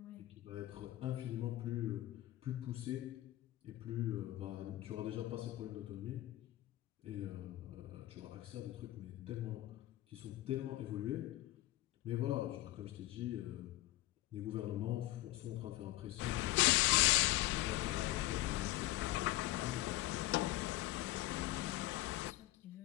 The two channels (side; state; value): right; quieter; 16.7 dB